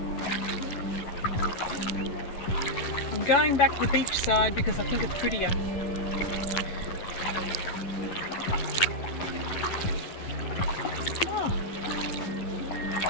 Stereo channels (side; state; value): right; late; 11 ms